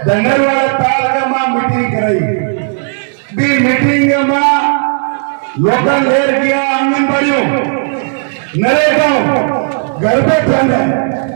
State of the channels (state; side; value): silent; left; digital silence